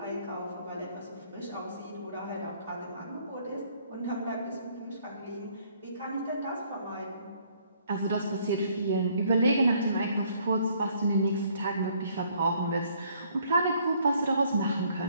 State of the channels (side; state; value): both; inverted; correlation -0.64